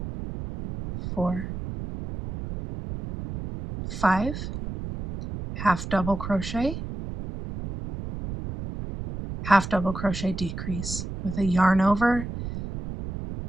4, 5, half double crochet, half double crochet decrease with a yarn over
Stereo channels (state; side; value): noise; right; rumble, 8 dB below the sound